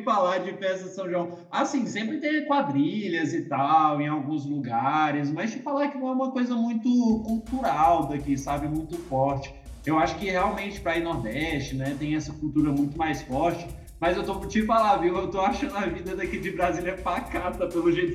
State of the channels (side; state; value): both; identical; correlation 1.00